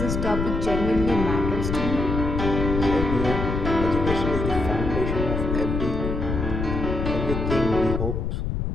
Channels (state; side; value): noise; left; rumble, 2 dB below the sound